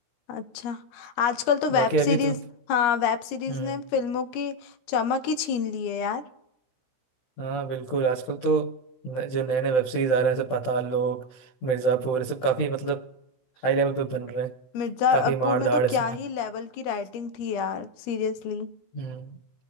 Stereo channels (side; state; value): right; late; 17 ms